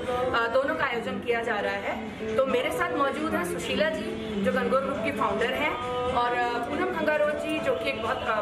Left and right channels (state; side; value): identical; both; correlation 1.00